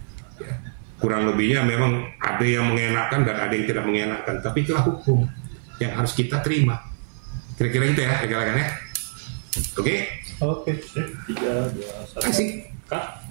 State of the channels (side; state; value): left; silent; 57 dB below the other